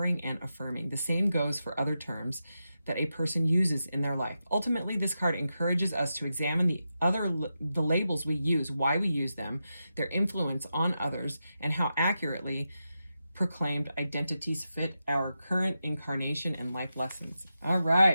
and affirming. The same goes for other terms that a person uses in their life. Ultimately, this card encourages us to examine the labels we use, why we use them, their influence on others, and how accurately proclaimed identities fit our current incarnation and life lessons. All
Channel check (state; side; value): inverted; both; correlation -0.89